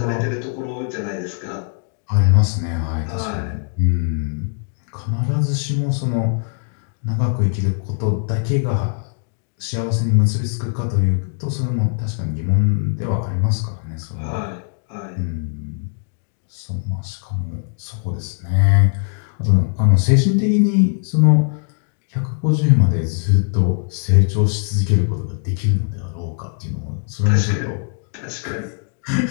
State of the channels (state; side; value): silent; right; 65 dB below the other